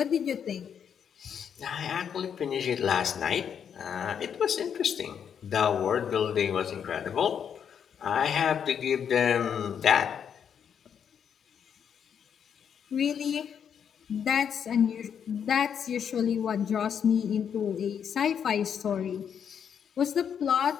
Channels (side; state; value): right; quieter; 7.9 dB